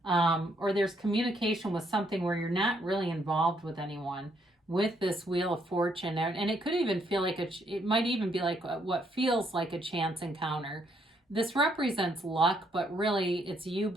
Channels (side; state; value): both; normal; correlation 0.72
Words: or there's communication with something where you're not really involved with anyone with this Wheel of Fortune. And it could even feel like it might even be like what feels like a chance encounter. This represents luck, but really it's you